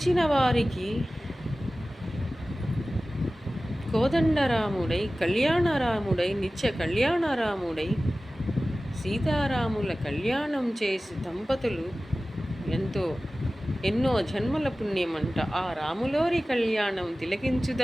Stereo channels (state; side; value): normal; both; correlation 0.96